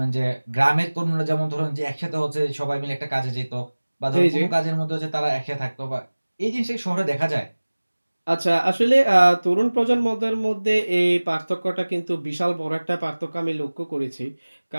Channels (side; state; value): both; inverted; correlation -1.00